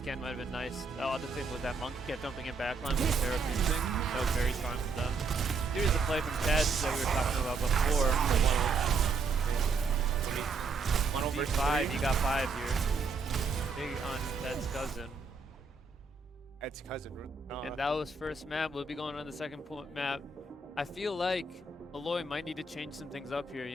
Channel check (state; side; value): quieter; left; 4.2 dB